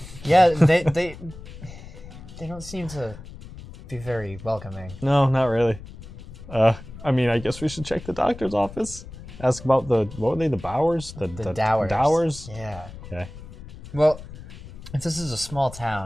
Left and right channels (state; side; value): noise; left; rumble, 15 dB below the sound